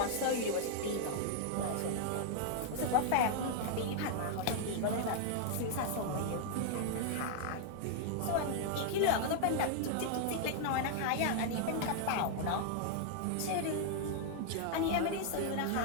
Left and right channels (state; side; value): different; both; correlation -0.01